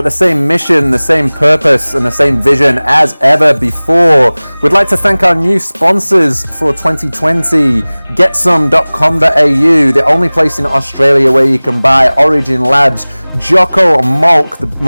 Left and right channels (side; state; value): both; inverted; correlation -1.00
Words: the same mission, the same purpose, and the same vision as ever before. We'd like to thank our new sponsors for 2020, Getsome.com.au, the only place in Australia where you can buy Origin Labs Jocko Milk, the